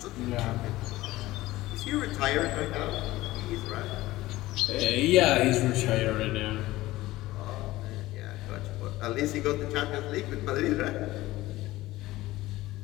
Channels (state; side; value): quieter; right; 17.6 dB